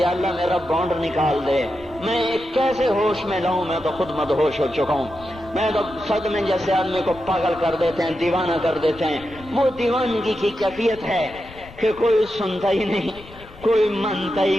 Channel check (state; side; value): noise; left; rumble, 20 dB below the sound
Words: اللہ میرا بانڈ نکال دے. میں کیسے ہوش میں لاؤں؟ میں تو خود مدہوش ہو چکا ہوں. میں تو صدمے جیسے آدمی کو پاگل کر دیتے ہیں، دیوانہ کر دیتے ہیں. وہ دیوانگی کی کیفیت ہے کہ کوئی سنتا ہی نہیں، کوئی مانتا ہی